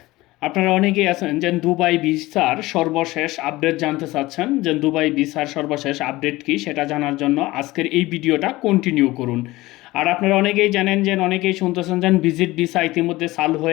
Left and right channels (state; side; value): quieter; right; 19.2 dB